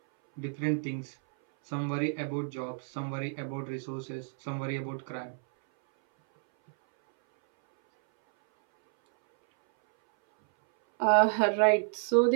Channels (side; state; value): left; silent; 58 dB below the other